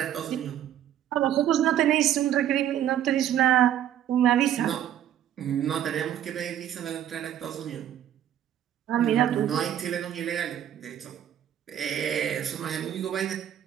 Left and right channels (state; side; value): quieter; left; 10.9 dB